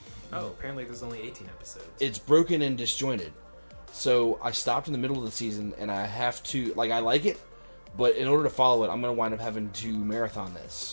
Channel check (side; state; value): both; inverted; correlation -1.00